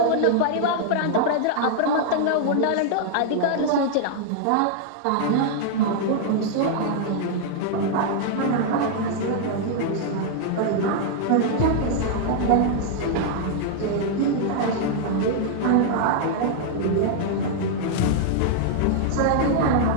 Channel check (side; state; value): both; different; correlation -0.01